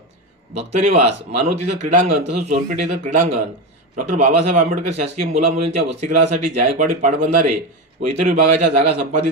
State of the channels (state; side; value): normal; both; correlation 0.17